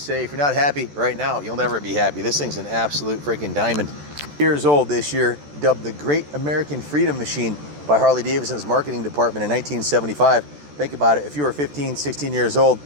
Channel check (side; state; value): left; late; 14 ms